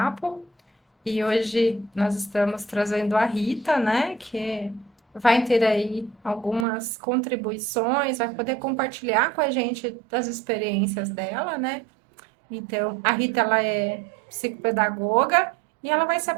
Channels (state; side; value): drops out; left; at 6.7 s